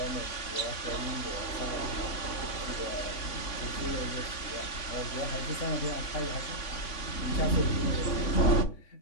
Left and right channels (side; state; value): right; late; 3.5 ms